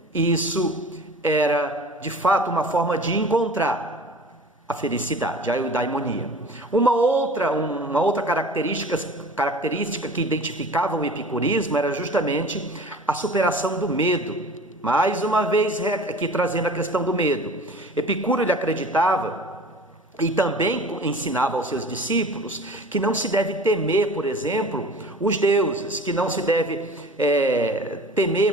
isso era, de fato, uma forma de encontrar a felicidade, a eudaimonia. Uma outra característica que identificava o epicurismo era justamente a superação do medo. Mais uma vez aqui trazendo a questão do medo. Epicuro, ele acreditava e também ensinava aos seus discípulos que não se deve temer, por exemplo, os deuses, que não se deve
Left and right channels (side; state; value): both; normal; correlation 0.42